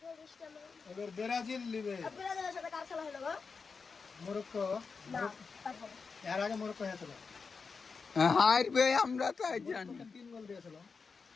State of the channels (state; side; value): quieter; right; 5.0 dB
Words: এবার ব্রাজিল লিবে, মরক্কো, এর আগে মরক্কো হয়েছিল, হারবে আমরা তাই জানি। 3 গোল দিয়েছিল।